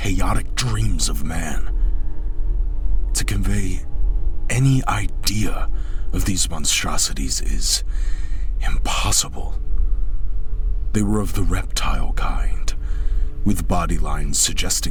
dreams of man. To convey any idea of these monstrosities is impossible. They were of the reptile kind, with body lines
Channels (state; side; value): identical; both; correlation 1.00